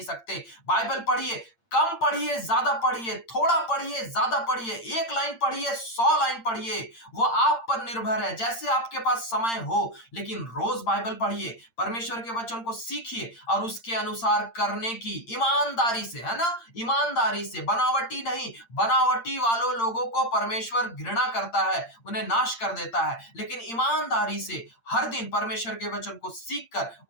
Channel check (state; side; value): late; right; 8.7 ms